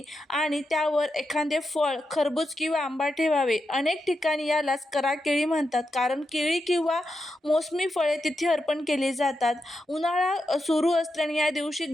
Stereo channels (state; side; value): normal; both; correlation 0.87